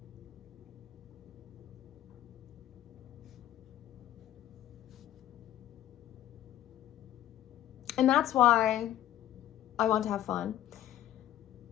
And that's why I want to have fun.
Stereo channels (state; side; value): quieter; right; 12.4 dB